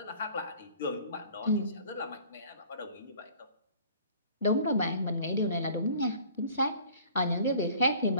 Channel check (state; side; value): inverted; both; correlation -0.50